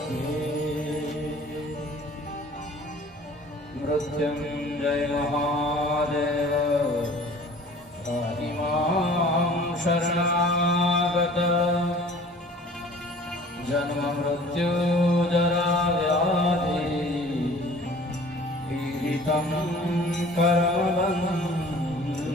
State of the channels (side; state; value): both; normal; correlation 0.48